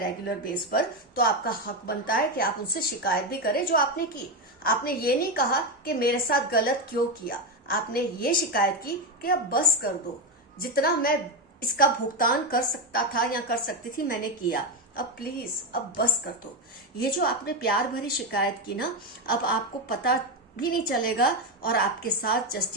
बेस पर, तो आपका हक बनता है कि आप उनसे शिकायत भी करें जो आपने की। आपने ये नहीं कहा कि मेरे साथ गलत क्यों किया, आपने ये शिकायत की कि अब बस कर दो, जितना मैं इसका भुगतान कर सकता था या कर सकती थी मैंने किया, अब प्लीज अब बस कर दो। ये जो आपने प्यार भरी शिकायत की ना, अब आपको पता भी नहीं चलेगा और आपके साथ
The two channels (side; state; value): both; normal; correlation 0.11